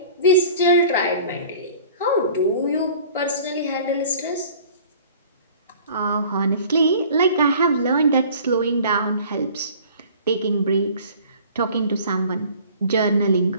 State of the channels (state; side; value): inverted; both; correlation -0.47